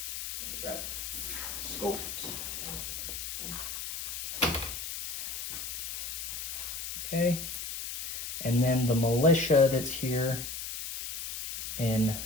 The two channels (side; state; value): left; noise; hiss, 6 dB below the sound